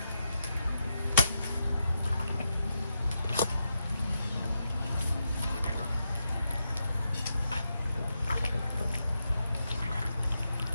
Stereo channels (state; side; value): inverted; both; correlation -0.85